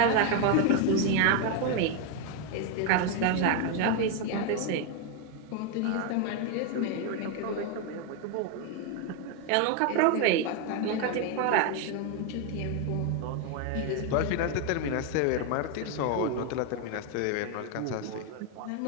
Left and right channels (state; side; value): different; both; correlation 0.01